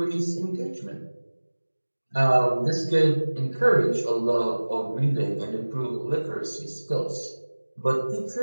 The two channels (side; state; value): both; inverted; correlation -1.00